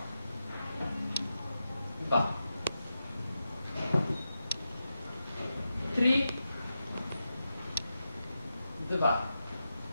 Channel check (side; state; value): both; inverted; correlation -0.89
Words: 2. 3, 2.